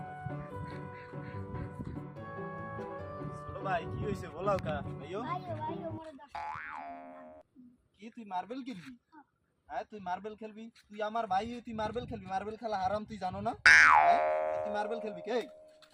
ছোট ভাই কি হইছে বলাও কা ভাইও ভাইও মোরে 10 কি তুই মার্বেল কিনবি হ্যাঁ তুই মার্বেল খেলবি তুই আমার ভাই তুই মার্বেল খেলবি মার্বেল খেলা হারাম তুই জানো না তুই মার্বেল খেলবি কে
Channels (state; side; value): identical; both; correlation 1.00